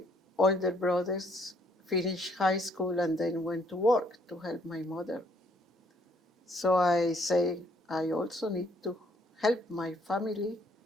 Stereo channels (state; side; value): normal; both; correlation 0.66